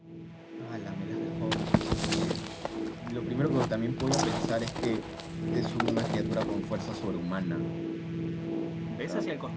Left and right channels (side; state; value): both; identical; correlation 1.00